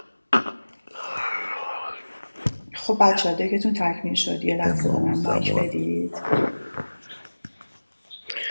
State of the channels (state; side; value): inverted; both; correlation -1.00